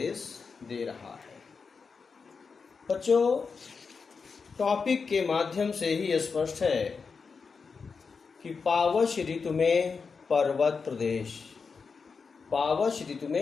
दे रहा है। बच्चों टॉपिक के माध्यम से ही स्पष्ट है कि पावश ऋतु में पर्वत प्रदेश, पावश ऋतु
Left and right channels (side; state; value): right; quieter; 5.2 dB